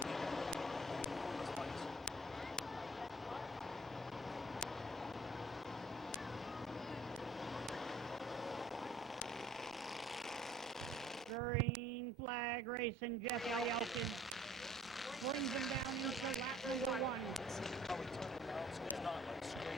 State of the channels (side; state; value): both; normal; correlation 0.55